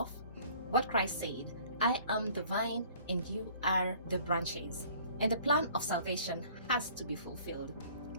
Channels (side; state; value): both; inverted; correlation -0.52